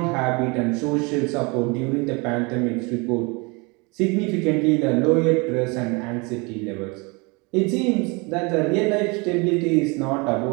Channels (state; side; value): quieter; left; 28.6 dB